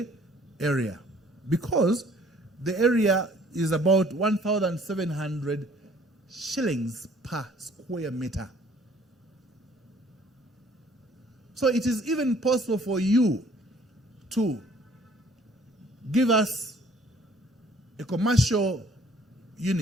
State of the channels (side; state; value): both; normal; correlation 0.57